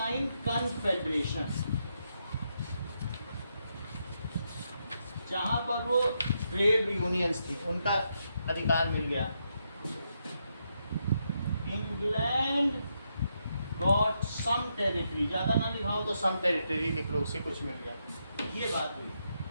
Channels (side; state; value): both; inverted; correlation -0.81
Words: कन्फेडरेशन, जहां पर वो ट्रेड यूनियंस थी उनका अधिकार मिल गया। इंग्लैंड गॉट सम टेरिटरी, ज्यादा ना लिखाओ तो सम टेरिटरी लिख लो, उससे कुछ मिल गया। ये बात हुई,